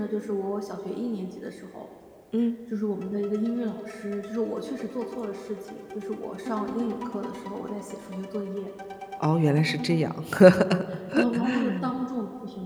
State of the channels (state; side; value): identical; both; correlation 1.00